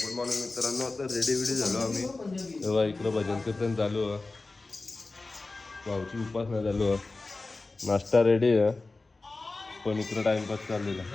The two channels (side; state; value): right; quieter; 3.5 dB